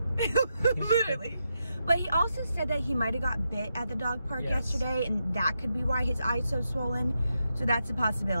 Literally. But he also said that he might have got bit at the dog park yesterday, and that could be why his eye's so swollen. So that's a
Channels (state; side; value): inverted; both; correlation -0.85